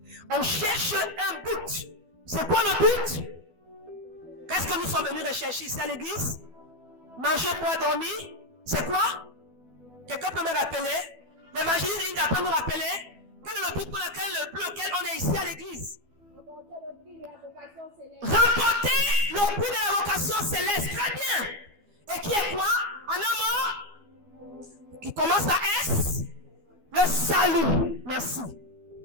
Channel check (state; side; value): late; left; 12 ms